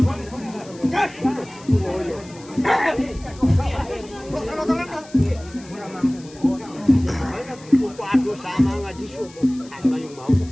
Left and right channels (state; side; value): noise; left; hiss, 22 dB below the sound